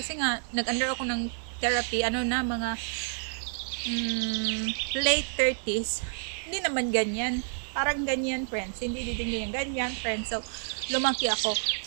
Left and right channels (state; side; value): silent; left; 58 dB below the other